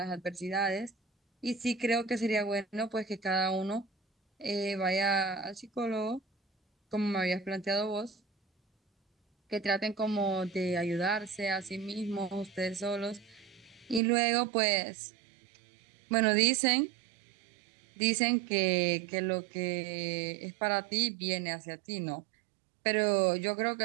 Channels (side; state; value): left; drops out; at 14.0 s